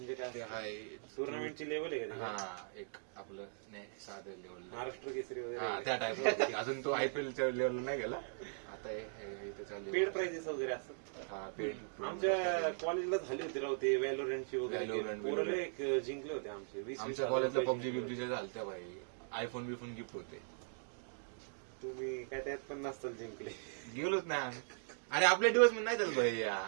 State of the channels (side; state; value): left; silent; digital silence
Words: काय? ते हाय टुर्नामेंटची लेवल आहे का? हा, एक आपलं नाही साधं लेवल, महाराष्ट्र केसरी हा वगैरे त्या टाइप. अजून तो आयपीएलच्या लेवलला नाही गेला. आता इथं चालू पेड प्राइजेस वगैरे असं. हा पेड. आमच्या कॉलेजला झाली होती राव ते व्हॅलोरंटची वगैरे Valorant, पोरं एक जिंकले होते आमचे 20-20 आमच्या हजार कॉलेजला रुपये पबजी जिंकले बिबजी होते. झालत्या भाई. आयफोन बिफोन गिफ्ट होते. तुम्ही काय त्यात पण नसताल जिंकले. गेलोच नाही आम्ही. अरे आपल्या दिवस नाही चालत भाई.